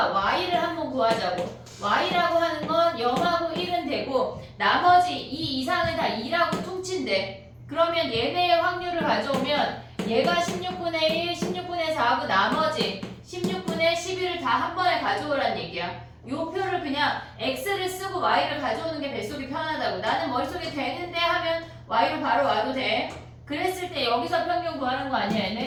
y를 한번 구하자고. y라고 하는 건 0하고 1은 되고 나머지 2 이상은 다 2라고 퉁친대. 그러면 얘네의 확률을 가져오면 얘가 16분의 1, 16분의 4하고 나머지 16분의 11을 다 한 번에 가져오란 얘기야. 요 표를 그냥 x를 쓰고 y를 가져오는 게 뱃속이 편하다고. 나는 머릿속에 되는데 하면 y로 바로 와도 돼. 그랬을 때 여기서 평균 구하는 거 아니야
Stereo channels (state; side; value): identical; both; correlation 1.00